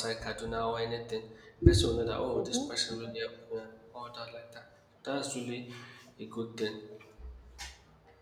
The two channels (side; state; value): both; identical; correlation 1.00